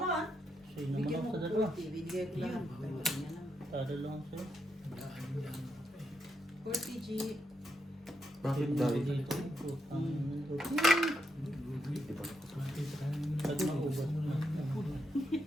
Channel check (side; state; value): both; normal; correlation 0.81